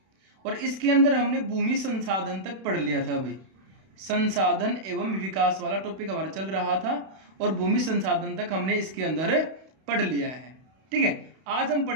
और इसके अंदर हमने भूमि संसाधन तक पढ़ लिया था। भाई संसाधन एवं विकास वाला टॉपिक हमारा चल रहा था और भूमि संसाधन तक हमने इसके अंदर पढ़ लिया है। ठीक है, आज हम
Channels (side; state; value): left; late; 32 ms